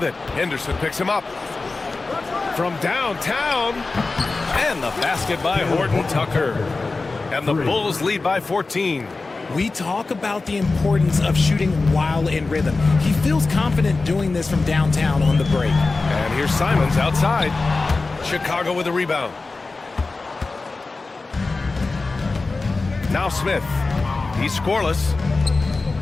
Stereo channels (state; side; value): quieter; right; 3.7 dB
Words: it. Henderson picks him up. From downtown. And the basket by Horton Tucker. And the Bulls lead by 14. We talk about the importance of shooting while in rhythm. He feels confident doing this from downtown on the break. And here's Simons outside. Chicago with a rebound. Now Smith. He's scoreless.